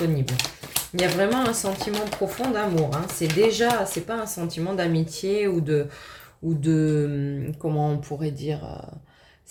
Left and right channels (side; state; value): both; identical; correlation 1.00